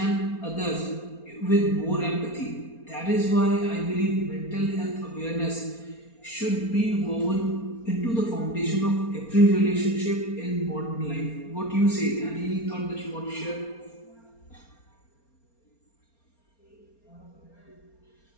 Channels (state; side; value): late; right; 4.3 ms